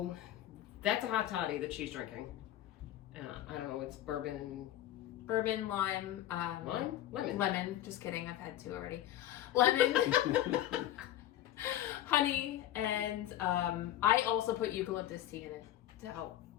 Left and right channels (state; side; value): quieter; right; 12.9 dB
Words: that's a hot toddy that she's drinking. I don't know, it's bourbon, Lime. Lemon. Lemon. Just kidding. I've had two already. Lemon. Honey. And I also put eucalyptus tea in it to help.